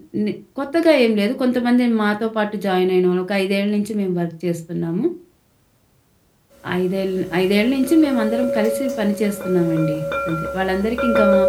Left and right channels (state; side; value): identical; both; correlation 1.00